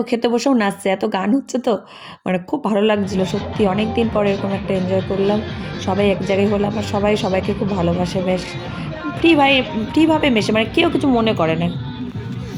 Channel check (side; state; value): both; identical; correlation 1.00